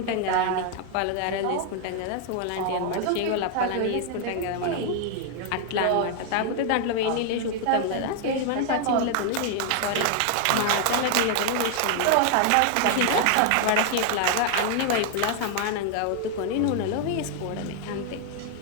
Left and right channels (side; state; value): both; different; correlation 0.00